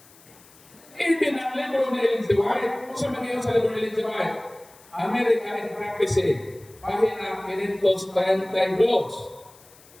Even ang libro ni Ellen G. White, kung sa mga sa libro ni Ellen G. White, America in Prophecy, pahina 532.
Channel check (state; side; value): noise; left; hiss, 25 dB below the sound